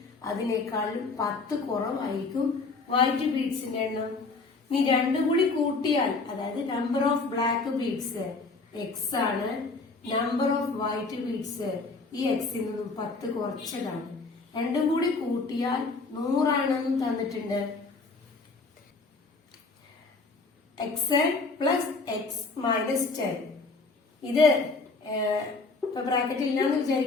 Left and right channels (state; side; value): quieter; right; 3.9 dB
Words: അതിനേക്കാളും 10 കുറവായിരിക്കും വൈറ്റ് ബീഡ്സിന്റെ എണ്ണം. ഇനി രണ്ടും കൂടി കൂട്ടിയാൽ, അതായത് number of black beads X ആണ്, നമ്പർ ഓഫ് വൈറ്റ് ബീഡ്സ് ഈ എക്സിൽ നിന്നും 10 കുറച്ചതാണ്. രണ്ടും കൂടി കൂട്ടിയാൽ 100 ആണെന്നും തന്നിട്ടുണ്ട്. X plus X minus 10. ഇത് ഇപ്പൊ ബ്രാക്കറ്റ് ഇല്ലാന്ന്